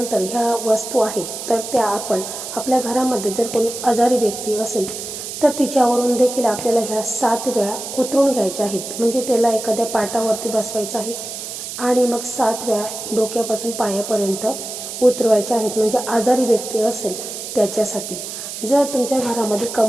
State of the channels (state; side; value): noise; right; hiss, 8 dB below the sound